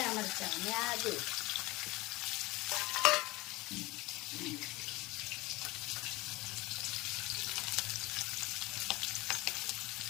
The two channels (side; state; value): right; quieter; 21.4 dB